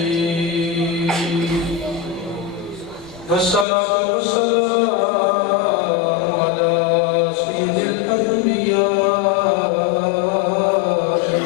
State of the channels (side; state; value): right; drops out; at 3.7 s